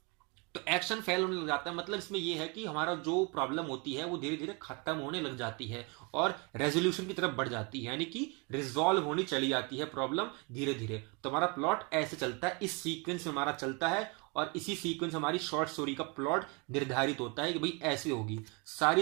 तो एक्शन फेल होने लग जाता है। मतलब इसमें यह है कि हमारा जो प्रॉब्लम होती है वो धीरे धीरे खत्म होने लग जाती है और रेजोल्यूशन की तरफ बढ़ जाती है, यानी कि रिजॉल्व होनी चली जाती है प्रॉब्लम धीरे धीरे। तो हमारा प्लॉट ऐसे चलता है, इस सीक्वेंस में हमारा चलता है, और इसी सीक्वेंस में हमारी शॉर्ट स्टोरी का प्लॉट निर्धारित होता है कि भाई ऐसे होगी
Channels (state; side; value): quieter; left; 31.2 dB